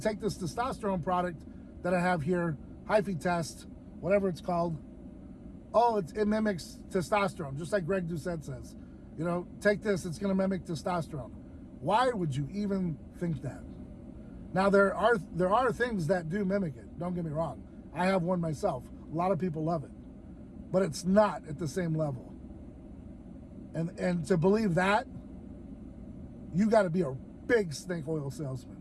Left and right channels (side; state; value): both; identical; correlation 1.00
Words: this testosterone product that I have here, hyphae test, whatever it's called, oh, it mimics testosterone, just like Greg Doucette says. You know, take this, it's going to mimic testosterone. Why would you even think that? Now, there are things that do mimic it. Don't get me wrong. I have one myself. A lot of people love it. But it's not at the same level. And to believe that, you got to be a big snake oil